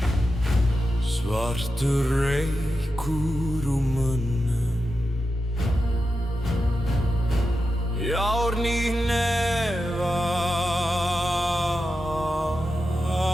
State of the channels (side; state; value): both; normal; correlation 0.90